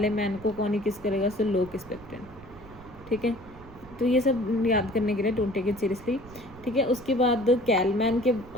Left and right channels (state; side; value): noise; right; rumble, 19 dB below the sound